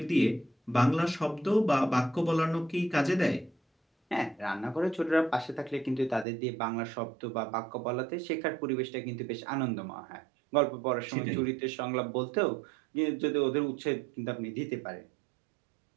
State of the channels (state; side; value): drops out; left; at 6.2 s